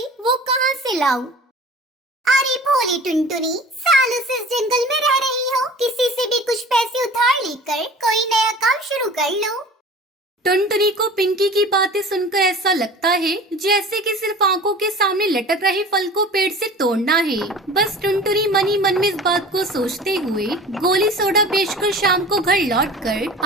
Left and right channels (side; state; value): both; normal; correlation 0.41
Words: वो कहाँ से लाऊं? अरे भोली टुनटुनी, सालों से इस जंगल में रह रही हो, किसी से भी कुछ पैसे उधार लेकर कोई नया काम शुरू कर लो। टुनटुनी को पिंकी की बातें सुनकर ऐसा लगता है जैसे कि सिर्फ आंखों के सामने लटक रहे फल को पेड़ से तोड़ना है। बस टुनटुनी मन ही मन में इस बात को सोचते हुए गोली सोडा बेचकर शाम को घर